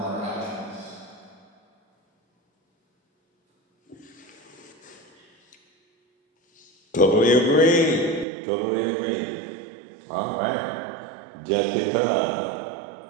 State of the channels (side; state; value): left; drops out; at 8.2 s